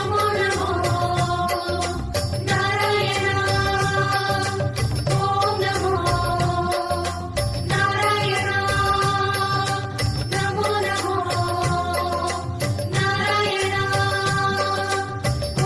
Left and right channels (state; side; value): identical; both; correlation 1.00